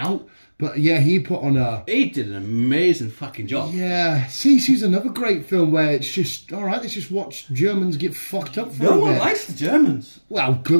But yeah, he put on a. He did an amazing fucking job. Yeah, Sisu's another great film where it's just all right. Let's just watch Germans get fucked up for a bit. No one likes the Germans. Well,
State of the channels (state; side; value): inverted; both; correlation -1.00